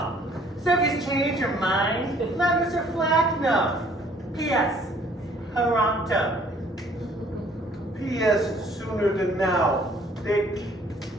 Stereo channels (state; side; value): normal; both; correlation 0.59